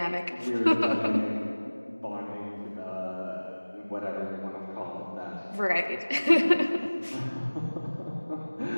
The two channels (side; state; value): both; inverted; correlation -1.00